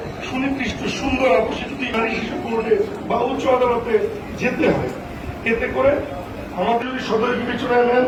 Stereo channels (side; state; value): both; identical; correlation 1.00